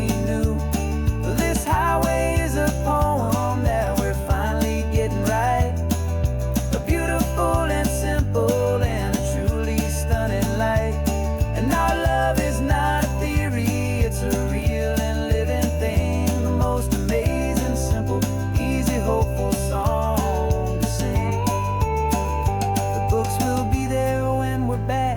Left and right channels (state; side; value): identical; both; correlation 1.00